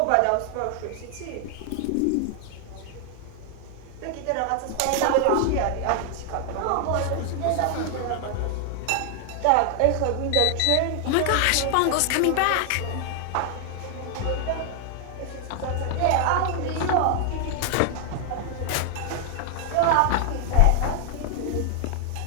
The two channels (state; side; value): different; both; correlation 0.00